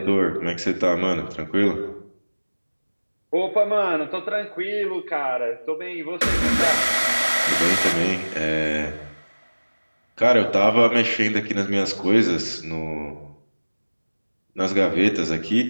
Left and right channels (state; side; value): inverted; both; correlation -1.00